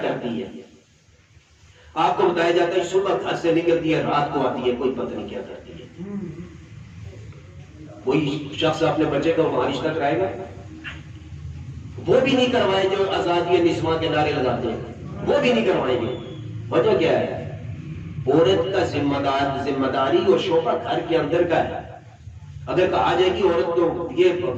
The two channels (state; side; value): identical; both; correlation 1.00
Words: کرتی ہے. آپ کو بتایا جاتا ہے صبح گھر سے نکلتی ہے, رات کو آتی ہے, کوئی پتہ نہیں کیا کرتی ہے. کوئی شخص اپنے بچے کا وہاں رشتہ کرائے گا؟ وہ بھی نہیں کروائیں جو آزادی نسواں کے نعرے لگاتے ہیں, وہ بھی نہیں کروائیں گے. وجہ کیا ہے؟ عورت کا ذمہ داری اور شعبہ گھر کے اندر کا ہے. اگر کہا جائے کہ عورت تو یہ